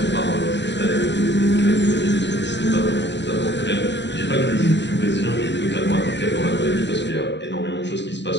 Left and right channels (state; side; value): late; right; 0.52 ms